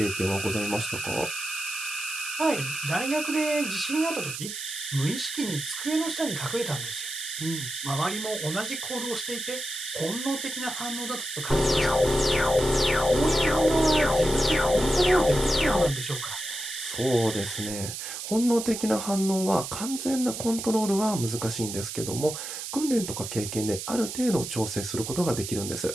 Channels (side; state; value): right; noise; hiss, 7 dB below the sound